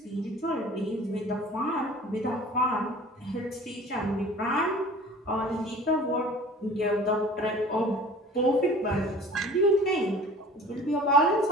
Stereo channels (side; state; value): both; normal; correlation 0.44